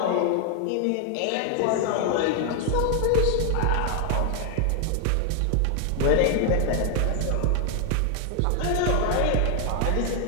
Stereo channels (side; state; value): both; different; correlation 0.00